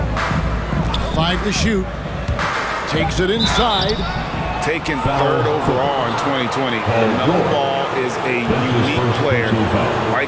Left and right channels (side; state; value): both; identical; correlation 1.00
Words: 5 to shoot. Takes it inside. Taken 3rd overall in 2020. LaMelo Ball is a unique player. Like